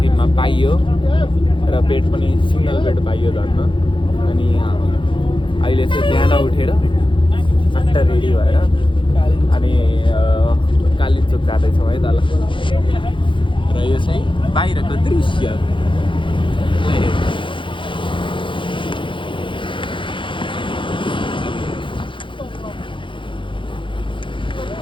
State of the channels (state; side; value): late; right; 0.24 ms